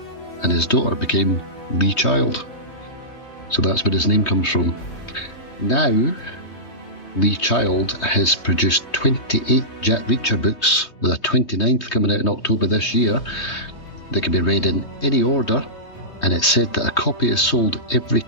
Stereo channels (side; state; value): right; late; 3.2 ms